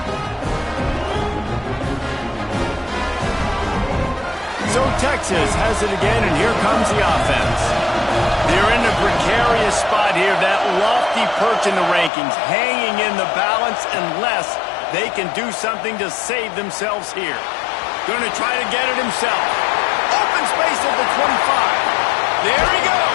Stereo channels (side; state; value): right; drops out; at 12.1 s